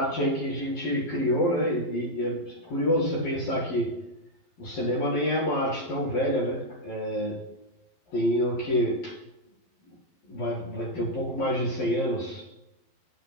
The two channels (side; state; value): right; late; 12 ms